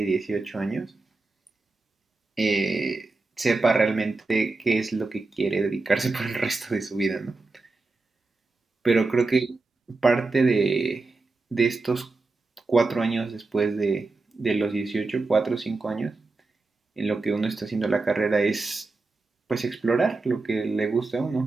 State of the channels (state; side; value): quieter; left; 3.5 dB